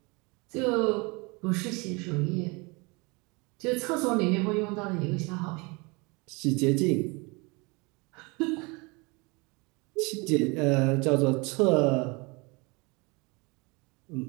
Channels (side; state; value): left; quieter; 27.8 dB